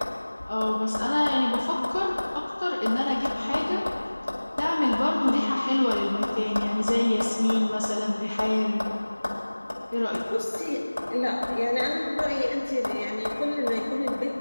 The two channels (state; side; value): inverted; both; correlation -1.00